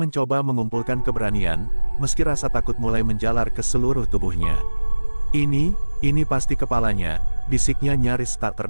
mengumpulkan keberanian, meski rasa takut mulai menjalar ke seluruh tubuhnya. Ini pasti kepalanya, bisiknya nyaris tak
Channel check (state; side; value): inverted; both; correlation -1.00